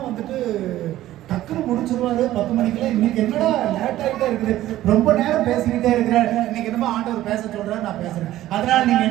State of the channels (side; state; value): left; quieter; 14.4 dB